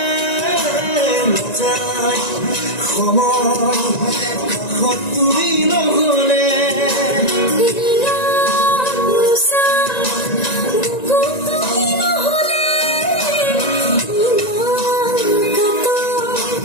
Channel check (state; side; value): late; right; 1.9 ms